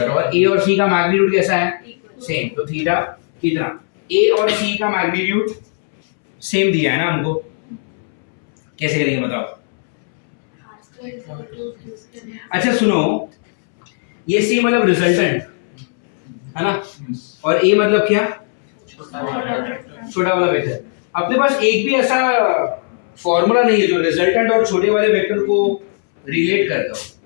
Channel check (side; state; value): right; silent; 67 dB below the other